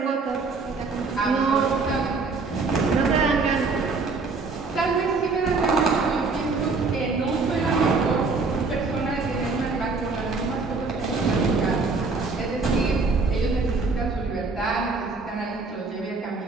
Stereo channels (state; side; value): quieter; left; 4.1 dB